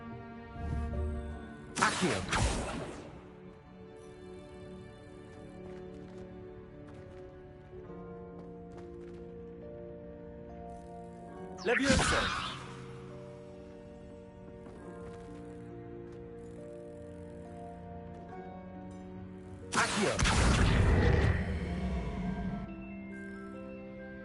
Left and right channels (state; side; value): identical; both; correlation 1.00